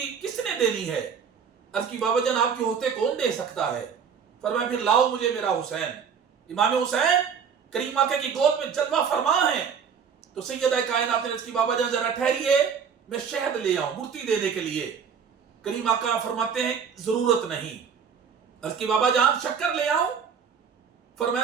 کس نے دینی ہے؟ عرض کی بابا جان آپ کے ہوتے کون دے سکتا ہے؟ فرمایا پھر لاؤ مجھے میرا حسین۔ امام حسین کریم آقا کی گود میں جلوہ فرما ہیں تو سیدہ کائنات نے عرض کی بابا جان ذرا ٹھہریے میں شہد لے آؤں گڑتی دینے کے لیے۔ کریم آقا فرماتے ہیں ضرورت نہیں۔ عرض کی بابا جان شکر لے آؤں؟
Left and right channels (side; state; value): left; quieter; 6.8 dB